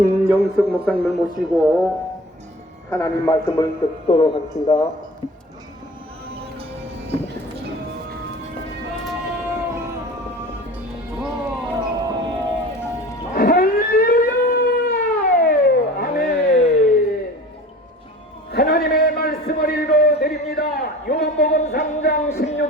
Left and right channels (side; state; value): both; normal; correlation 0.41